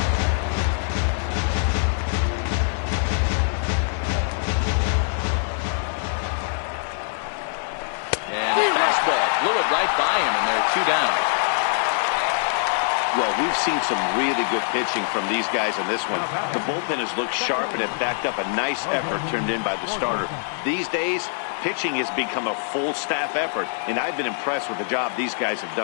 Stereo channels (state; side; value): silent; right; 57 dB below the other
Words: fastball blew it right by him, and they're 2 down. Well, we've seen some really good pitching from these guys in this one. The bullpen has looked sharp and have backed up a nice effort turned in by the starter. These days, pitching has become a full staff effort, and I've been impressed with the job these guys have